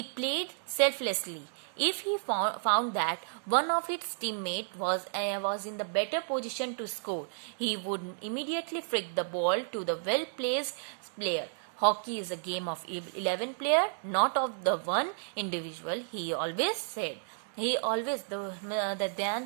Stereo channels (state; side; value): silent; left; digital silence